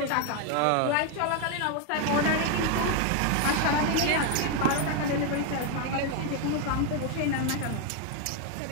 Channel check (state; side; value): different; both; correlation 0.01